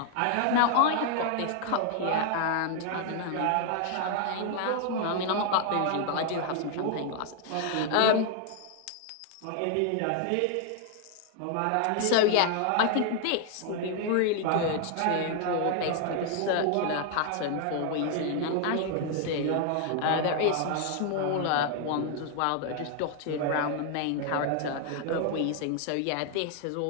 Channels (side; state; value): both; different; correlation 0.00